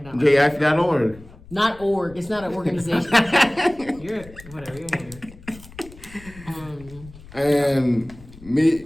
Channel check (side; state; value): left; noise; rumble, 20 dB below the sound